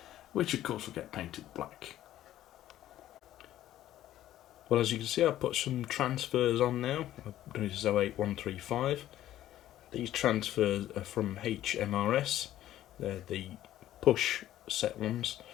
which of course will get painted black. Well, as you can see, I've put some transfers on now. I've done this O8 135. These transfers are from HMRS. They're the push set ones.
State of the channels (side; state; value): right; quieter; 13.1 dB